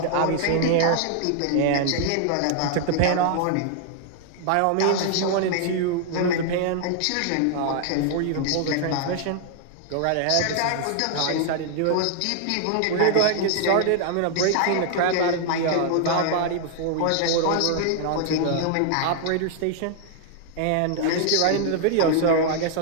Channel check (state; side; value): different; both; correlation -0.01